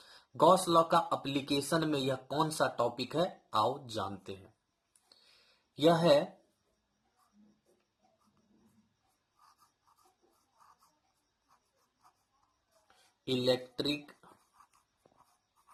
गॉस लॉ का एप्लीकेशन में यह कौन सा टॉपिक है, आओ जानते हैं। यह है electric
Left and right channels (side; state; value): both; identical; correlation 1.00